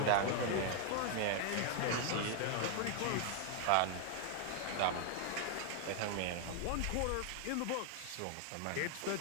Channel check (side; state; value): both; different; correlation 0.00